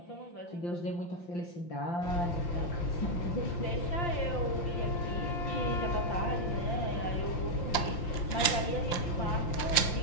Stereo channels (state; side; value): late; right; 5.8 ms